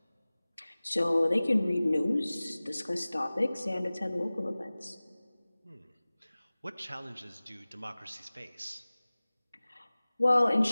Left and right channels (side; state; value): both; inverted; correlation -0.99